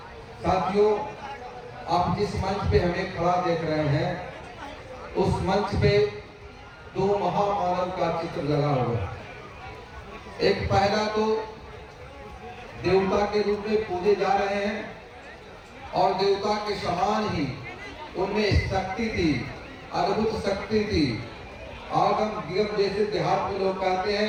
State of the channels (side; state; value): both; identical; correlation 1.00